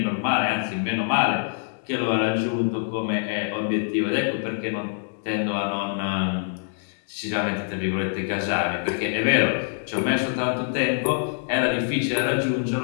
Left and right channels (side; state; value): right; silent; digital silence